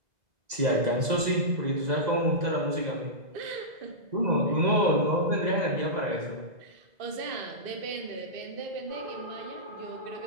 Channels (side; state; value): left; late; 2.0 ms